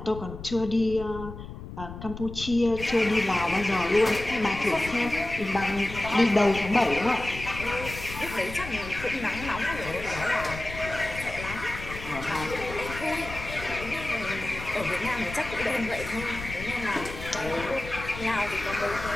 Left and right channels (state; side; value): noise; left; rumble, 11 dB below the sound